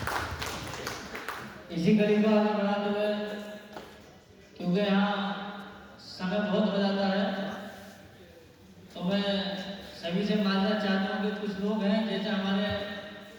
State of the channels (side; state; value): both; identical; correlation 1.00